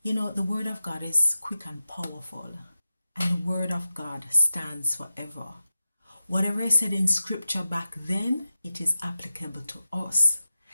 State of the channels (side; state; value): both; inverted; correlation -0.93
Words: You know, the Word of God is quick and powerful, and the Word of God stands forever. Whatever is said in Scripture back then, it is applicable to us.